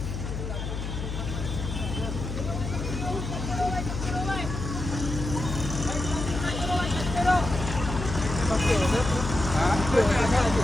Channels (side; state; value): left; noise; hum, 5 dB below the sound